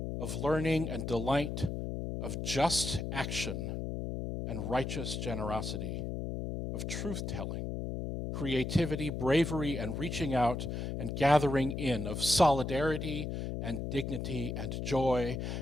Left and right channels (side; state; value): left; noise; hum, 3 dB below the sound